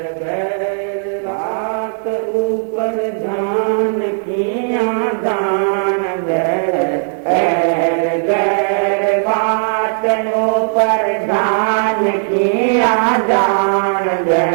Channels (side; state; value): left; silent; digital silence